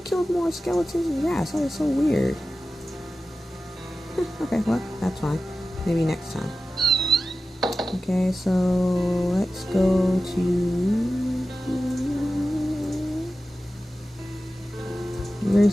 more skeletons and rats. That is so weird. Okay, well, that's fine. Maybe next time. Okay, so let's go to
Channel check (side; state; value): both; normal; correlation 0.94